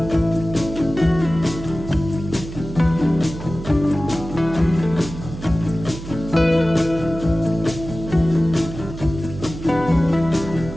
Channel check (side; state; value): right; noise; hum, 11 dB below the sound